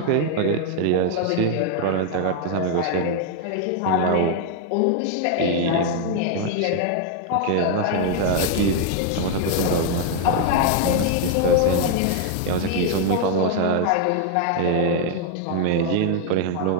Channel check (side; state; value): both; different; correlation 0.00